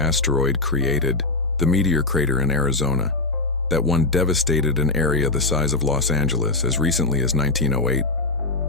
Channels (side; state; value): right; quieter; 3.2 dB